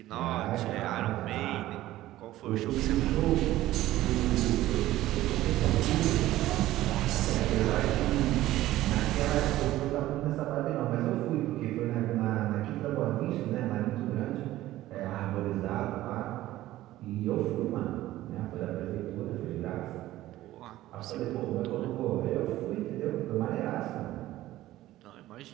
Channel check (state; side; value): quieter; left; 15.4 dB